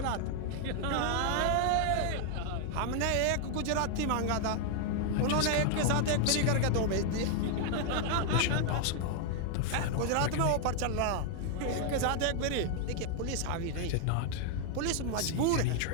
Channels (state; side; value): different; both; correlation 0.00